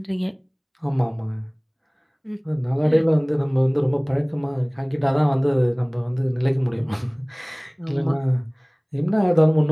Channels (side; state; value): both; identical; correlation 1.00